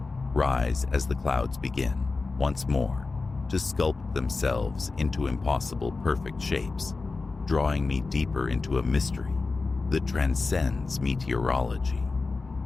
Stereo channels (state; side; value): quieter; right; 3.9 dB